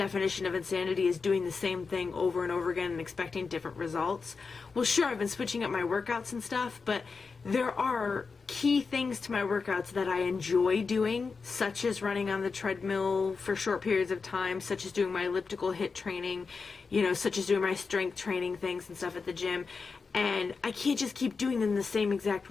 of insanity is doing the same thing over and over again and expecting different results. Well, sure, I've been switching up my workouts and stuff, but there are key things to my workouts that I enjoy doing, such as running on the treadmill for short periods of time, such as doing my elliptical HIIT training, you know, such as doing my strength training things and stuff at the gym. And I can't just keep doing them the same exact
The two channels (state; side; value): quieter; right; 4.8 dB